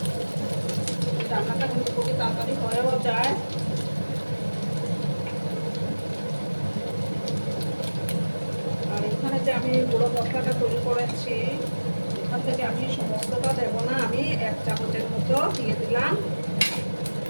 রান্নাটা কিন্তু খুবই তাড়াতাড়ি হয়েও যায়। আর এখানে যে আমি গুঁড়ো মশলাটা তৈরি করেছি, এখান থেকে আমি সমস্তটা দেবো না, আমি 1 চামচের মতো দিয়ে দিলাম।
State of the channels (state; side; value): inverted; both; correlation -1.00